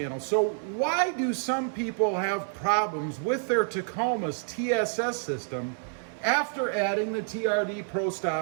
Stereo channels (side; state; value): left; silent; digital silence